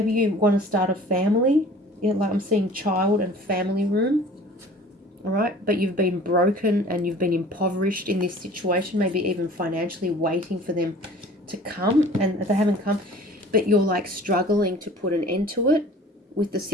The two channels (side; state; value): both; normal; correlation 0.47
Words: you want to start a family. Yeah, like I'm seeing child and family room. All right, but you've been broken and you've been impoverished in this situation, maybe even financially waiting for them to come, and they haven't come, but you're like struggling to put an end to it with the